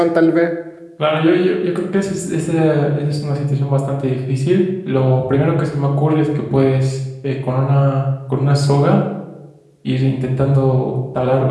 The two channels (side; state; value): both; identical; correlation 1.00